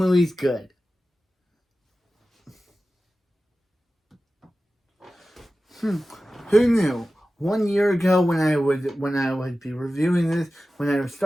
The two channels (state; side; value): normal; both; correlation 0.95